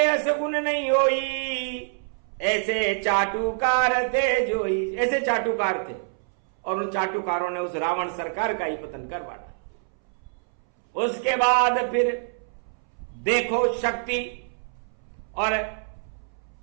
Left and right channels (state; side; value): silent; left; 61 dB below the other